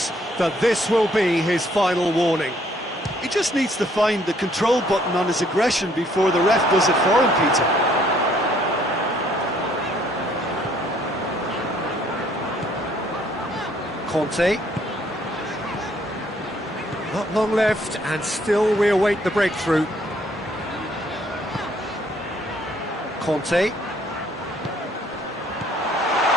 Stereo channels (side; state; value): both; normal; correlation 0.64